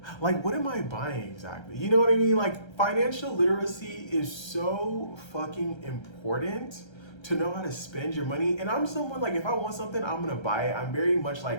Like, what am I buying exactly? You know what I mean? Like, financial literacy is so fucking important to know how to spend your money. And I'm someone like, if I want something, I'm gonna buy it. I'm very much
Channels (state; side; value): late; right; 1.3 ms